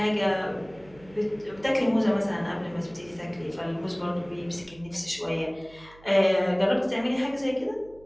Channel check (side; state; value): right; noise; hum, 24 dB below the sound